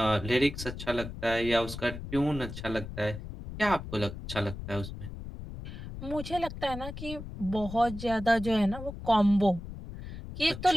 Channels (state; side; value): noise; left; rumble, 10 dB below the sound